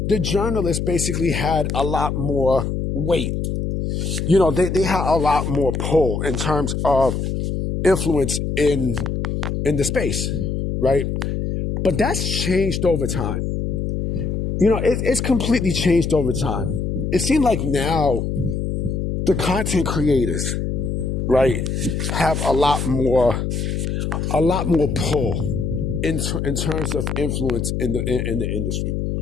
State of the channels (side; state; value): left; noise; hum, 1 dB below the sound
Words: the journalists basically had a lot more weight. They had a lot more pull in terms of influence in the space, right? But that's changed over time. It's completely changed over time. It seems like now the content creators, right, have a lot more pull in terms of influence in the industry.